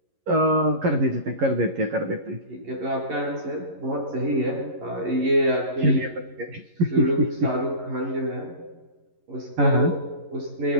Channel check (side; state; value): left; late; 11 ms